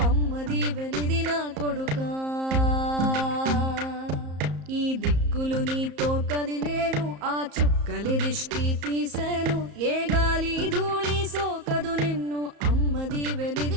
అమ్మది వెలిది నా కొడుకా ఈ దిక్కులు నీతో కదిలేను ఆ చుక్కలి దిష్టి తీసేను ఏ గాలి ధూళి సోకదు నిన్ను అమ్మది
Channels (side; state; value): left; late; 34 ms